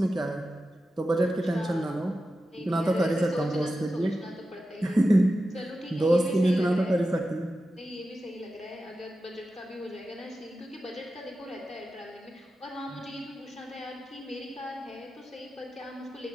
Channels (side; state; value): both; normal; correlation 0.92